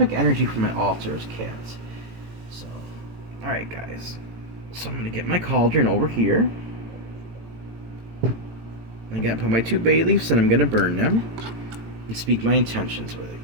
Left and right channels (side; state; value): left; late; 18 ms